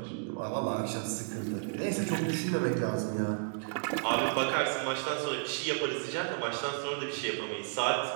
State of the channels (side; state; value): left; silent; digital silence